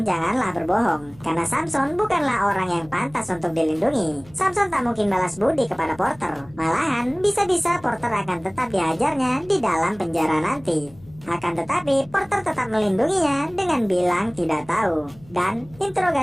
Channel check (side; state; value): left; noise; hum, 24 dB below the sound